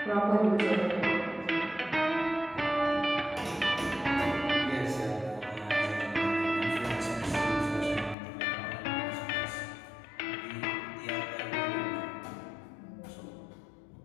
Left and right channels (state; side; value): drops out; right; at 8.2 s